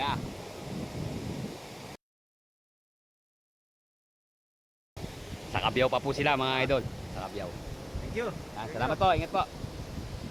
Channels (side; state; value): both; identical; correlation 1.00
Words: Sa Kabiyaw pa po sila mga idol. Sa Kabiyaw. Thank you. Salamat po, ingat po.